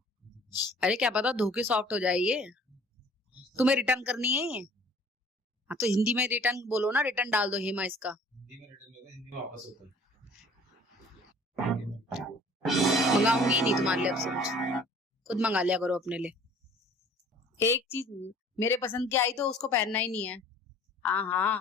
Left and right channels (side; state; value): both; normal; correlation 0.51